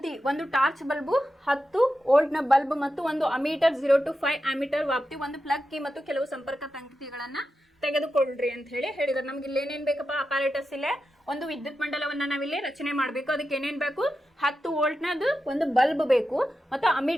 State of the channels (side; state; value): both; normal; correlation 0.90